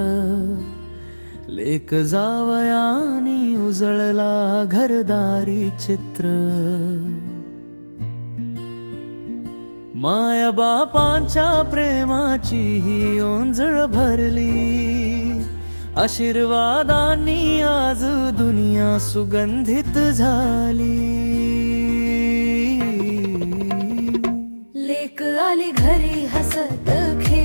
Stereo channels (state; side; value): inverted; both; correlation -1.00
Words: लेक जावयानी उजळला घरदारी चित्र माया बापांच्या प्रेमाची ही ओंजळ भरली आशीर्वादांनी आज दुनिया सुगंधित झाली लेक आली घरी हसत